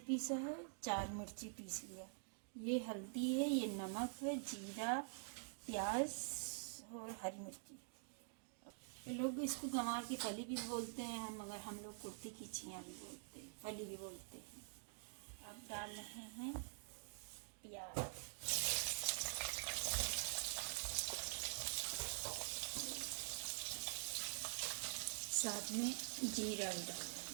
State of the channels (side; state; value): left; silent; digital silence